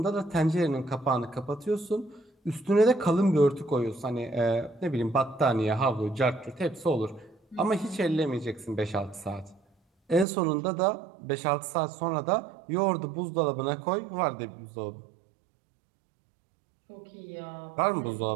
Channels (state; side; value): drops out; left; at 10.2 s